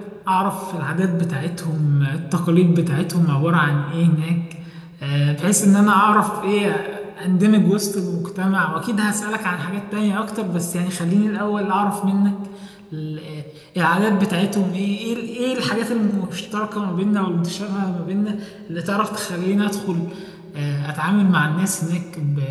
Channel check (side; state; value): both; identical; correlation 1.00